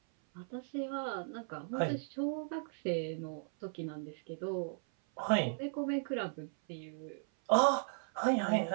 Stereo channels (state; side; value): silent; left; 53 dB below the other